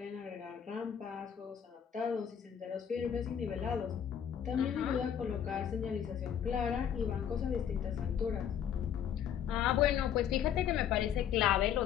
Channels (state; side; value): quieter; right; 9.0 dB